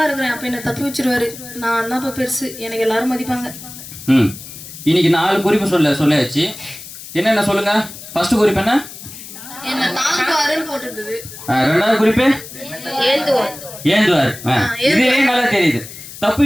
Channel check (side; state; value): left; noise; hiss, 14 dB below the sound